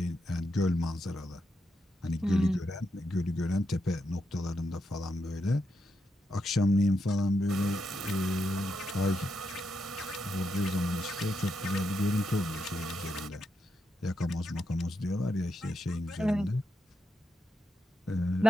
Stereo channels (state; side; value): normal; both; correlation 0.84